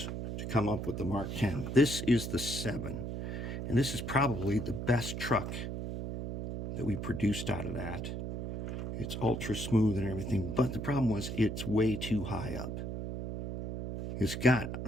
to come up with the Mark 10. This is the 7, and this is probably the best truck that we produced out of that. It's ultra smooth and everything, but the problem was it's way too high up. It's got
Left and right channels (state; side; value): noise; right; hum, 4 dB below the sound